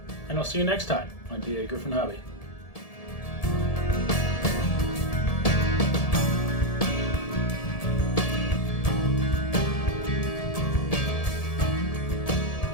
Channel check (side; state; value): right; late; 1.7 ms